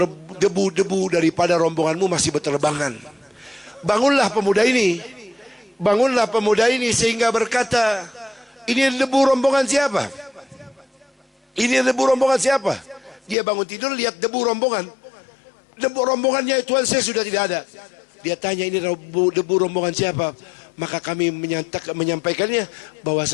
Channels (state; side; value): drops out; right; at 13.4 s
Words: debu-debu daripada rombonganmu masih berterbangan. Bangunlah pemuda ini, bangunlah pemuda ini sehingga berkata, ini debu rombongan siapa? Ini debu rombongan siapa? Dia bangun tidur lihat debu rombongan. Debu rombongannya Tuan Syekh sudah tidak ada. Dia tanya, ini debu rombongan siapa? Maka kami menyampaikannya